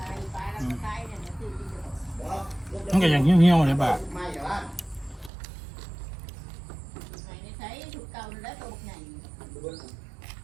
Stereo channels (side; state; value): left; drops out; at 5.3 s